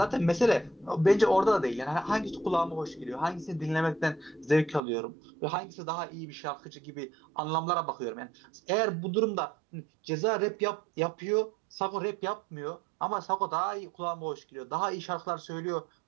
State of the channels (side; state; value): left; drops out; at 4.8 s